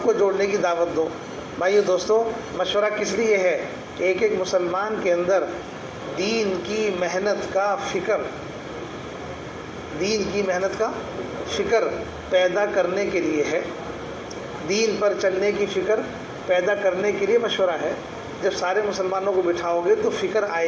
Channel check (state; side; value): identical; both; correlation 1.00